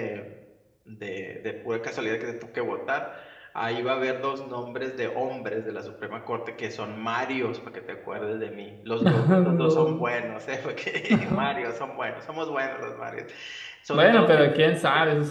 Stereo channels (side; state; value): both; identical; correlation 1.00